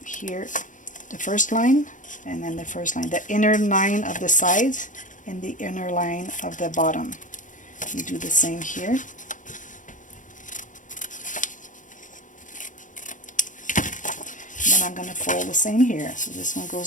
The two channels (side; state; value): right; late; 0.37 ms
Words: here, the first line, and then the first line, the inner line of the sides and the inner line of the bottom. You do the same here. And then I'm going to fold the same here. So this one